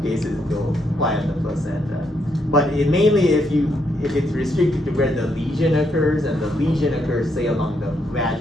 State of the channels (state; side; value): normal; both; correlation 0.77